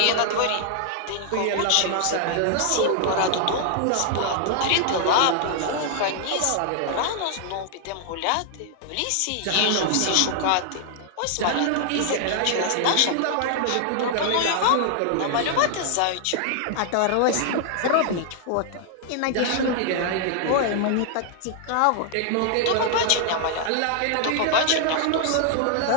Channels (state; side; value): different; both; correlation -0.01